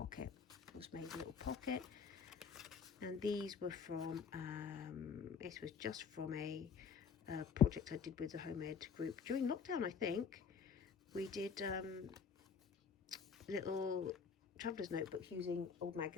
And these were from, this was just from a project I did with the Home Ed group during lockdown, I think. We did little traveller's notebooks using old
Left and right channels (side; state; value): right; quieter; 6.3 dB